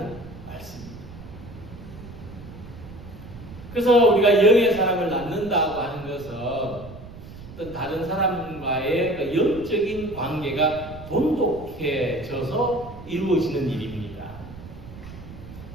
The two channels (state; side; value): noise; right; rumble, 15 dB below the sound